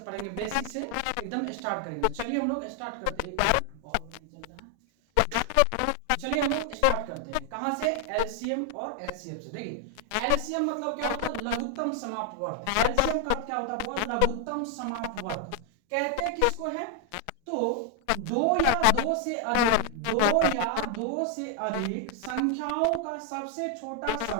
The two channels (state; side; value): different; both; correlation 0.00